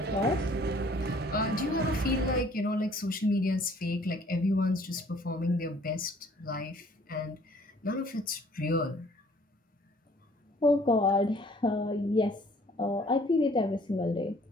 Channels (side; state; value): both; normal; correlation 0.57